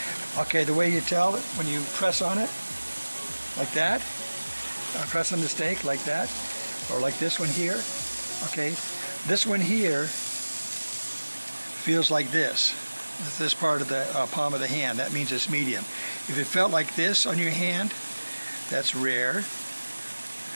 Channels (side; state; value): both; inverted; correlation -1.00